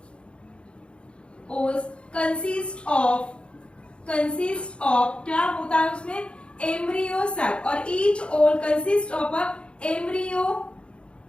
consist of क्या होता है उसमें, एम्ब्रियो सैक. और each ovule consist of a embryo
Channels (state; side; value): late; right; 0.057 ms